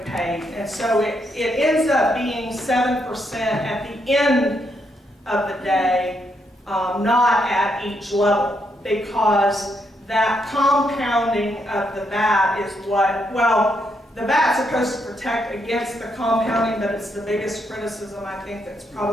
paid. And so it ends up being 7% at the end of the day, not at each level, because that compounding of the VAT is what, well, the VAT's supposed to protect against the compounding, but it's the biggest criticism I think that's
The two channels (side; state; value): both; normal; correlation 0.78